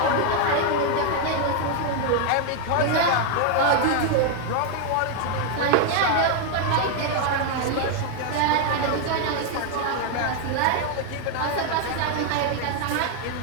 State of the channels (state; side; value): different; both; correlation 0.01